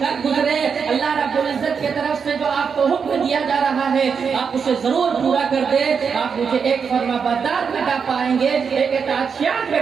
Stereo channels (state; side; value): quieter; left; 6.2 dB